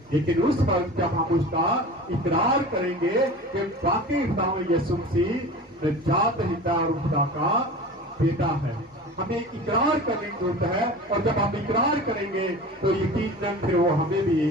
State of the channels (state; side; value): normal; both; correlation 0.36